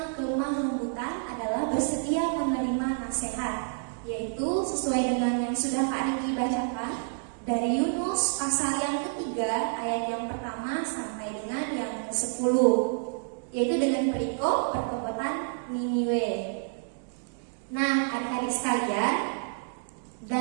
kelemah lembutan adalah bersedia menerima nasihat, yaitu sesuai dengan yang sudah Kak Riki bacakan dari Yunus pasal yang ketiga ayat yang pertama sampai dengan yang ke-10, yaitu dengan perikop pertobatan Niniwe. Nah, adik-adik sekalian,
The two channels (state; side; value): silent; left; digital silence